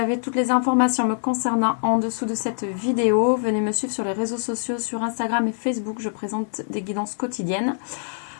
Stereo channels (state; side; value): silent; right; 63 dB below the other